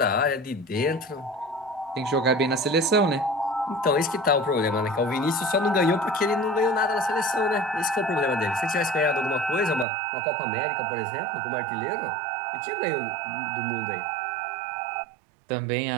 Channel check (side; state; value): left; drops out; at 9.9 s